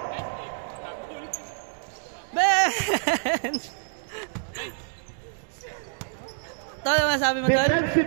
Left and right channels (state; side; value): silent; left; digital silence